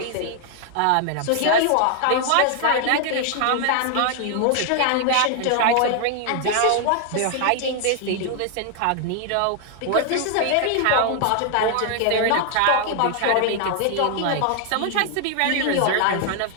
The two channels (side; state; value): both; different; correlation 0.00